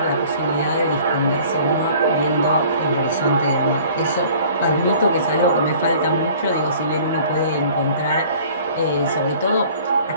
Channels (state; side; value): inverted; both; correlation -0.50